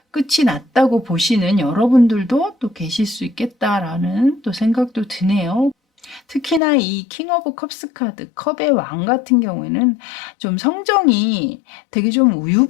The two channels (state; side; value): drops out; right; at 6.6 s